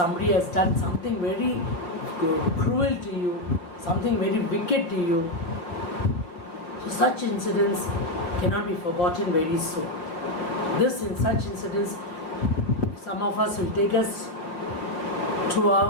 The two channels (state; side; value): late; right; 6.1 ms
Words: has done something very cruel to you, something very wicked to you. So such incidents cannot be forgotten very soon. In such incidents, some of us will take us to